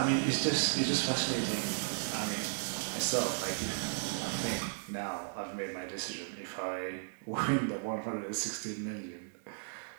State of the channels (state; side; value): silent; left; digital silence